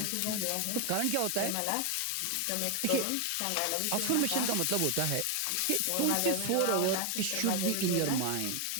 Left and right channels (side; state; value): both; different; correlation 0.01